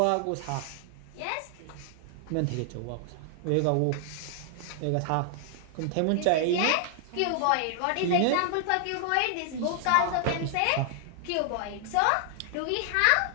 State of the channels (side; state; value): both; different; correlation 0.00